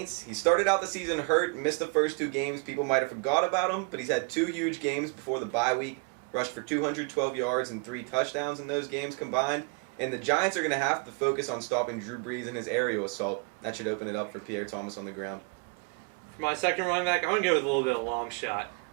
He started out the season hurt, missed the first 2 games. People might have forgot about him, but he's had 2 huge games before the bye week. Rushed for 212 yards and 3 touchdowns in those games combined. And the Giants are going to have to focus on stopping Drew Brees and his aerial assault. That should open it up for Pierre Thomas on the ground. For my second running back, I'm going to go with a little bit of a long shot.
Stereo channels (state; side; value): quieter; left; 33.2 dB